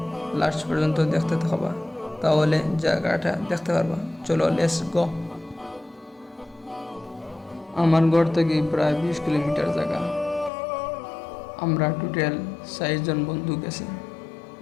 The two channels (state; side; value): drops out; right; at 10.5 s